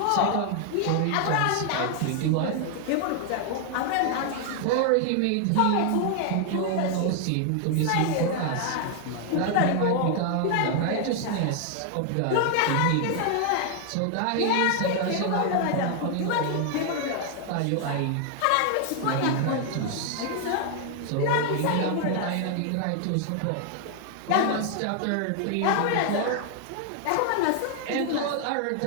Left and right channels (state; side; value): different; both; correlation 0.00